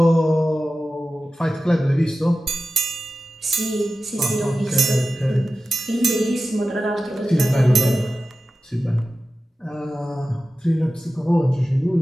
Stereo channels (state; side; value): normal; both; correlation 0.94